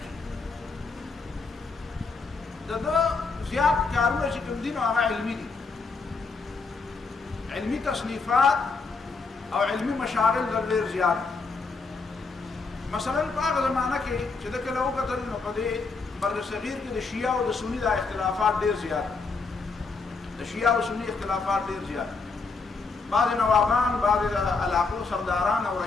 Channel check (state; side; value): quieter; right; 4.3 dB